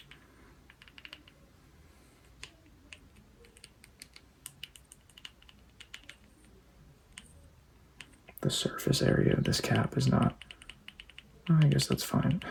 The surface area of this cap is not, I guess that's fine.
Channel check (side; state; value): both; identical; correlation 1.00